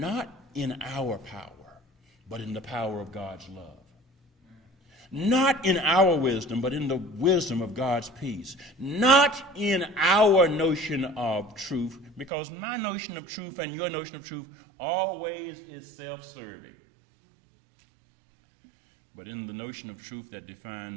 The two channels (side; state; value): left; drops out; at 12.3 s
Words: in our power, but in the power of God's love. Not in our wisdom, but in the wisdom of God's peace. Not in our notion of truth, because my notion of truth and your notion of truth always is self-serving. But in the notion of truth that